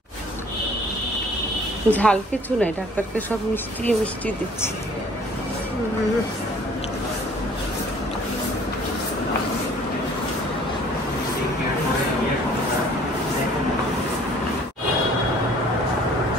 ঝাল কিছু নাই, ডাক্তারকে সব মিষ্টি মিষ্টি দিচ্ছি।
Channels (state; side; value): normal; both; correlation 0.54